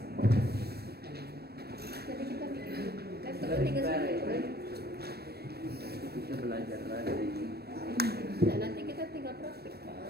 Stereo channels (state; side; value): late; left; 0.47 ms